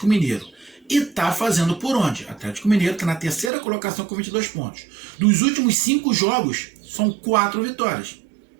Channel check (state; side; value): drops out; left; at 3.5 s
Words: Mineiro. E tá fazendo por onde? O Atlético Mineiro está na 3ª colocação com 22 pontos. Dos últimos 5 jogos, são 4 vitórias.